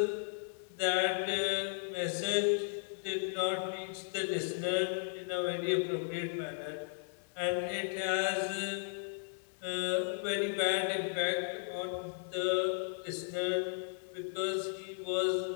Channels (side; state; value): right; silent; 54 dB below the other